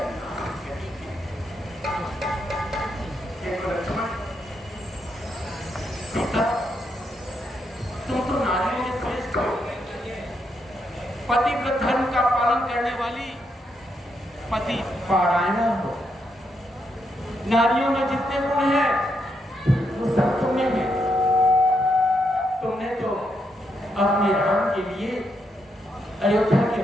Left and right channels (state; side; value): normal; both; correlation 0.79